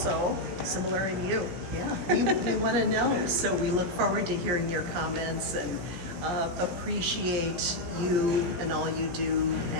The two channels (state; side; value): late; left; 17 ms